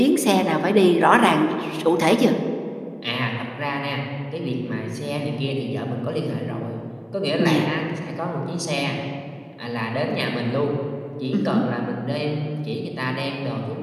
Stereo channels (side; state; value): both; identical; correlation 1.00